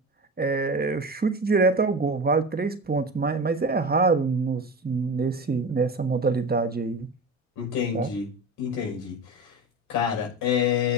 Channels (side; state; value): both; normal; correlation 0.28